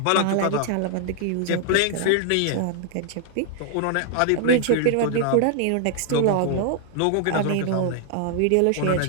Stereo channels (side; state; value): both; different; correlation 0.00